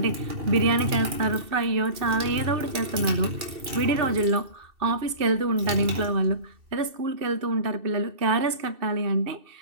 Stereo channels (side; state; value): left; late; 2.6 ms